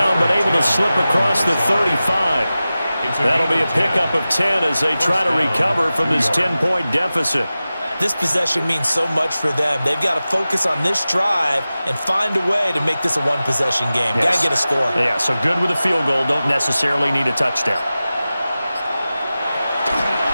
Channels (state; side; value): inverted; both; correlation -0.95